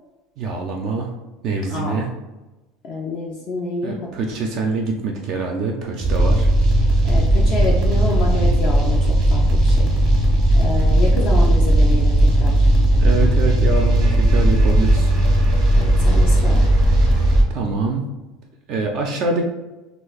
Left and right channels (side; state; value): both; normal; correlation 0.82